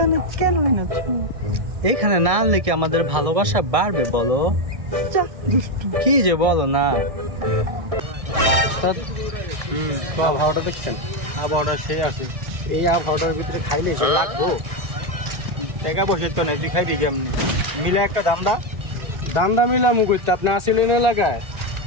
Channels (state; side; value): late; left; 1.6 ms